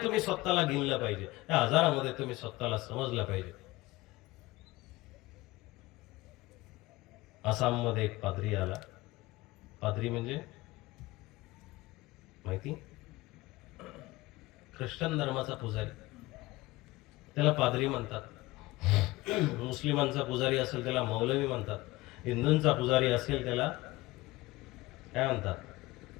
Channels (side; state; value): right; quieter; 19.9 dB